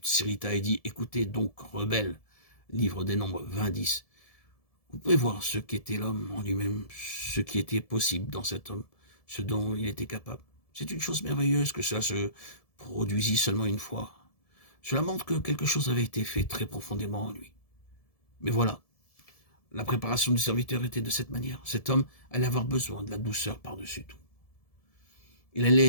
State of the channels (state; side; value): late; right; 1.7 ms